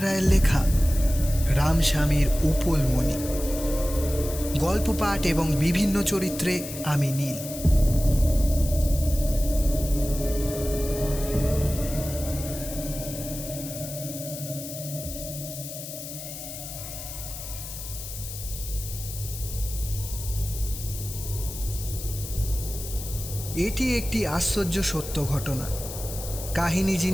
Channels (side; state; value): left; noise; hiss, 10 dB below the sound